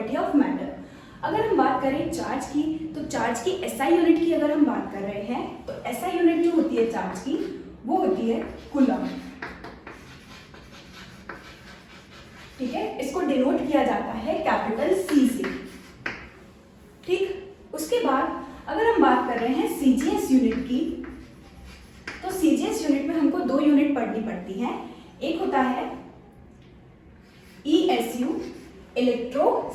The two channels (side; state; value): both; identical; correlation 1.00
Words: of matter. अगर हम बात करें चार्ज की, तो चार्ज की एसआई यूनिट की अगर हम बात कर रहे हैं तो एसआई यूनिट जो होती है चार्ज की वो होती है कूलम। ठीक है, इसको डिनोट किया जाता है कैपिटल सी से। ठीक, उसके बाद अगर हम बात कर रहे हैं सीजीएस यूनिट की, तो सीजीएस यूनिट में हमको दो यूनिट पढ़नी पड़ती हैं। एक होता है ESU,